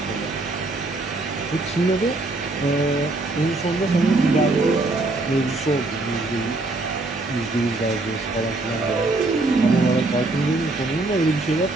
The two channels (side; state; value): left; quieter; 3.1 dB